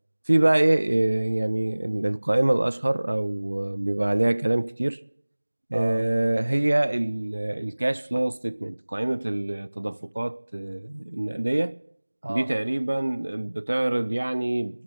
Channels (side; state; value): both; inverted; correlation -1.00